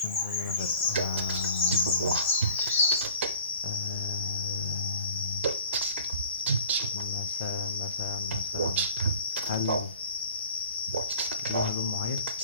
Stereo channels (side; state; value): both; inverted; correlation -0.45